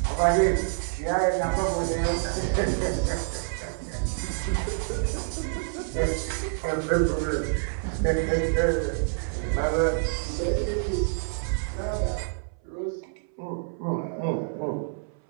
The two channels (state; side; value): silent; left; 60 dB below the other